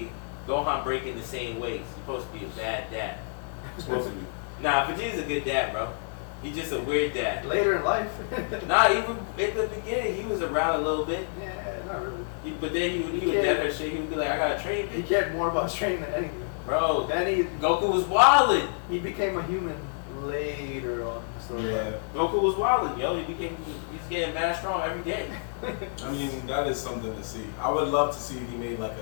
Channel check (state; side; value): silent; right; digital silence